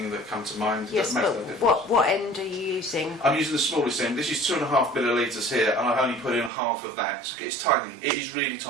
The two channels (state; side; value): drops out; left; at 6.5 s